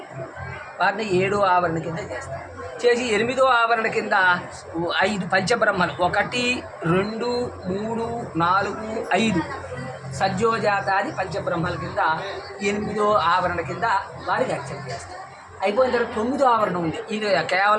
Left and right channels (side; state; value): both; identical; correlation 1.00